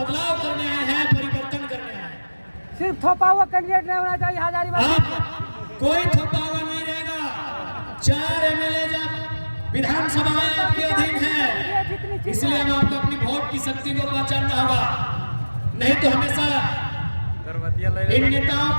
करने आए हैं, परिवर्तन करने आए हैं। सिर्फ थोपा हुआ कैंडिडेट नहीं होना चाहिए हजारीबाग। अब कोई थोपा हुआ नहीं रहेगा। 4 MLA जब विधानसभाएं आपके अधीन है, इसलिए हम आपको अपनी वोट की शक्ति को पहचानना होगा, नहीं तो हमेशा इन नेताओं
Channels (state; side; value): inverted; both; correlation -1.00